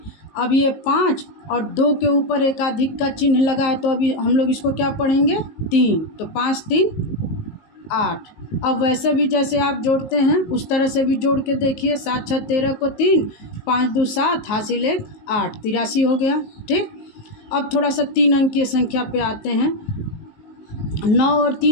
अब ये 5 और 2 के ऊपर एकाधिक का चिन्ह लगा है तो अभी हम लोग इसको क्या पढ़ेंगे, 3। तो 5 3 8। अब वैसे भी जैसे आप जोड़ते हैं उस तरह से भी जोड़ के देखिए, 7 6 13 को 3, 5 2 7, हासिल 1 8, 83 हो गया। ठीक, अब थोड़ा सा 3 अंकीय संख्या पे आते हैं। 9 और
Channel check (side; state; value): right; late; 19 ms